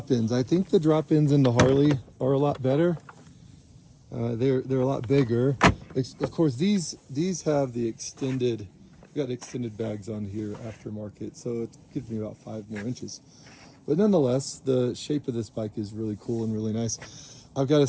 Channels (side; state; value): both; identical; correlation 1.00